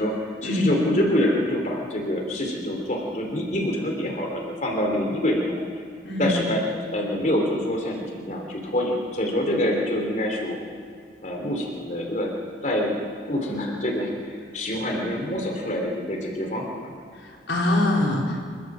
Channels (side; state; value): both; normal; correlation 0.55